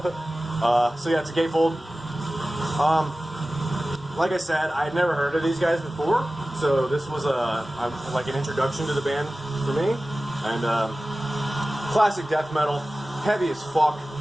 So yeah, it's a gatefold. Like I said, I had never heard of these guys before, so this was like an introduction to the band for me. And classic death metal, heavy as fuck.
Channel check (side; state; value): both; normal; correlation 0.96